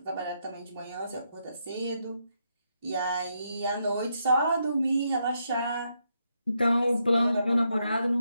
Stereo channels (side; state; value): both; inverted; correlation -0.80